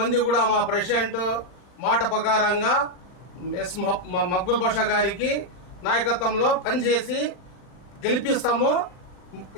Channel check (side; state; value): right; late; 40 ms